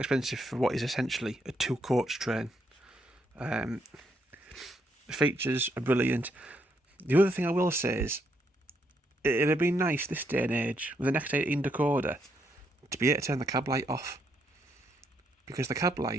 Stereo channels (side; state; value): both; normal; correlation 0.76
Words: for what is essentially a 2-coach train. The features are brilliant. The other thing I will say is, it'd have been nice this day and age, with an X18 decoder, to be able to turn the cab light off. Because the cab